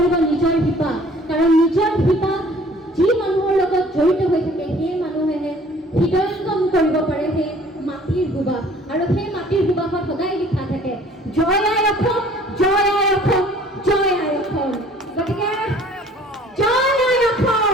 নিজৰ শিপা। কাৰণ নিজৰ শিপা যি মানুহৰ লগত জড়িত হৈ থাকে, সেই মানুহেহে হৃদয়ংগম কৰিব পাৰে সেই মাটিৰ সুবাস, আৰু সেই মাটিৰ সুবাসত সদায় লিখা থাকে জয় আই অসম।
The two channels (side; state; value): both; normal; correlation 0.53